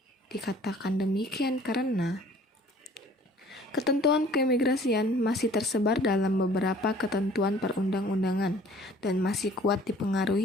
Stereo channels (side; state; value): both; normal; correlation 0.53